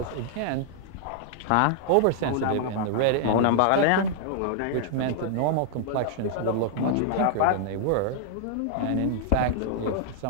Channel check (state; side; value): different; both; correlation -0.01